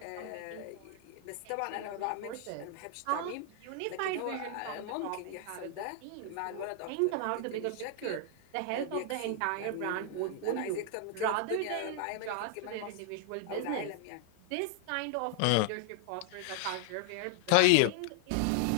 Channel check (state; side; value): different; both; correlation 0.00